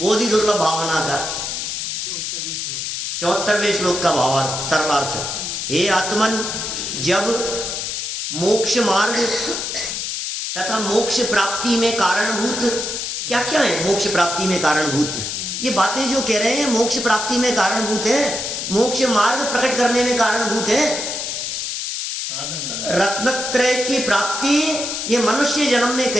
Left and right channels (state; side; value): noise; left; hiss, 3 dB below the sound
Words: दुर्लभ भावना का 74वें श्लोक का भावार्थ, सरल अर्थ। हे आत्मन, जब मोक्ष मार्ग तथा मोक्ष प्राप्ति में कारणभूत क्या क्या है, मोक्ष प्राप्ति में कारणभूत ये बातें जो कह रहे हैं, मोक्ष प्राप्ति में कारणभूत है, मोक्ष मार्ग प्रकट करने में कारणभूत है। रत्नत्रय की प्राप्ति ये मनुष्य जन्म में